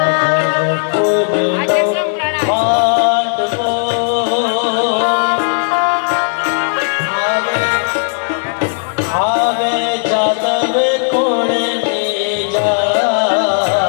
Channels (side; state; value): right; silent; digital silence